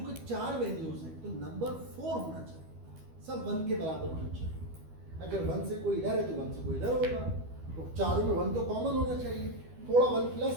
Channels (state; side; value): late; left; 12 ms